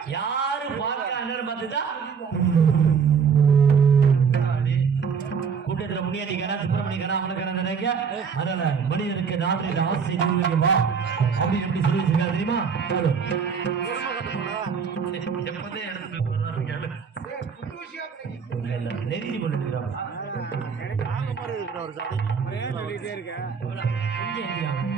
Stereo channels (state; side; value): quieter; left; 6.2 dB